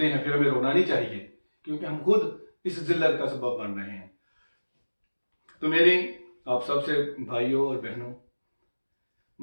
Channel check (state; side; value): inverted; both; correlation -1.00